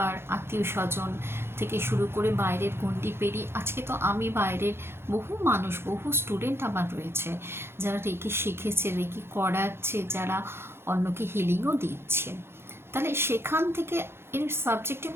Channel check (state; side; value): late; left; 0.12 ms